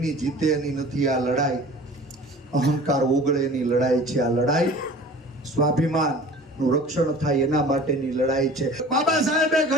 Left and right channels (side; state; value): both; normal; correlation 0.43